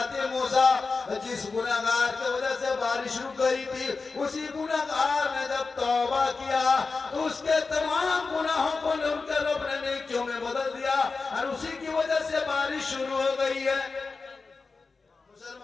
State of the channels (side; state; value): right; quieter; 4.3 dB